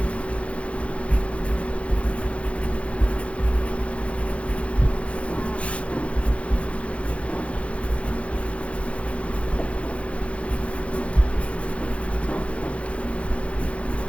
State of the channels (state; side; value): late; right; 0.062 ms